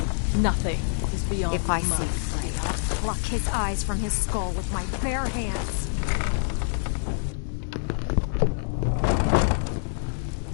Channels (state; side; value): silent; right; 61 dB below the other